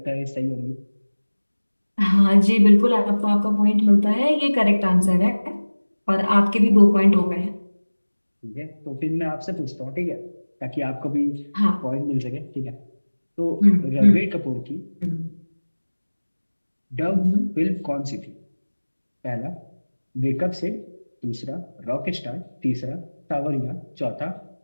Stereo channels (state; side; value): inverted; both; correlation -1.00